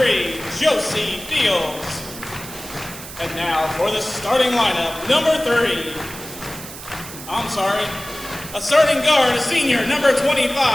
Josie Fields. And now for the starting lineup, number 3. A starting guard, a senior, number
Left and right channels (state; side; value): noise; right; hiss, 13 dB below the sound